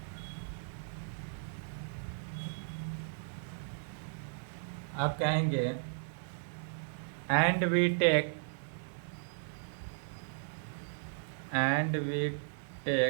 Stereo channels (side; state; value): left; silent; digital silence